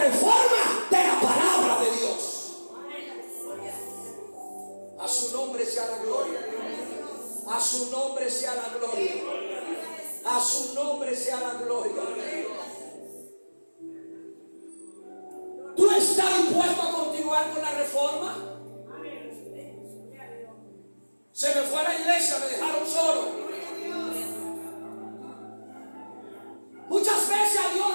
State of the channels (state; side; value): inverted; both; correlation -1.00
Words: de la palabra de Dios. A su nombre sea la gloria. A su nombre sea la gloria. A su nombre sea la gloria. ¿Tú estás dispuesto a continuar con la reforma? Se me fue a la iglesia, me dejaron solo. Muchas veces a Dios